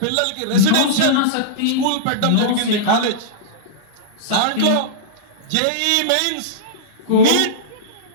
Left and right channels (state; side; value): different; both; correlation -0.03